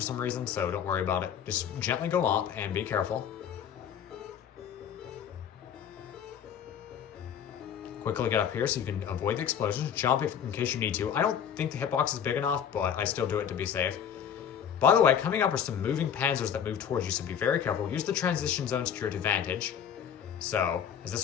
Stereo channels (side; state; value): right; quieter; 8.5 dB